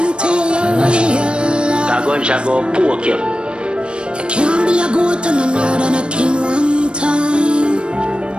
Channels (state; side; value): late; left; 0.056 ms